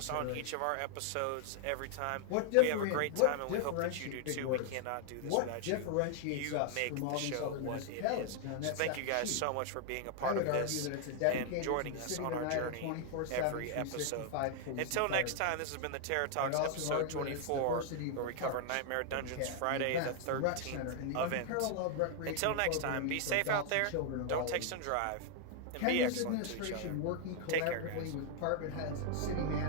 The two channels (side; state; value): both; different; correlation 0.00